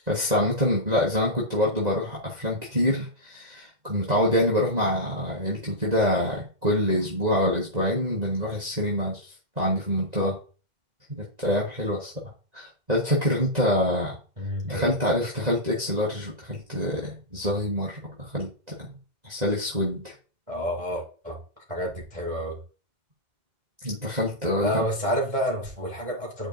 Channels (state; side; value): late; left; 1.9 ms